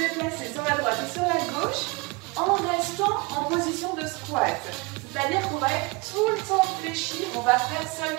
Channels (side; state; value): left; quieter; 26.4 dB